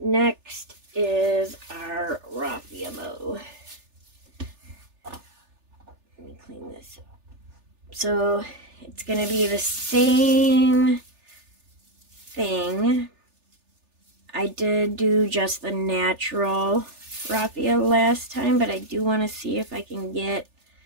is our raffia bow. Let me clean this up. So it's going to be the same thing. I did do just the natural raffia last time, but I do want to see if I can get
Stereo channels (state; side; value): late; left; 3.4 ms